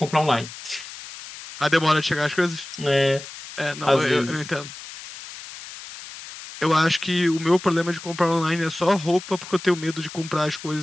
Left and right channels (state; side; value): noise; left; hiss, 14 dB below the sound